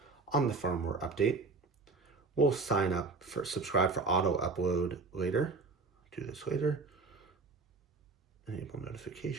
on the firmware update. We'll subscribe for auto upload later. Do this later. Enable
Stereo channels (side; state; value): left; quieter; 4.0 dB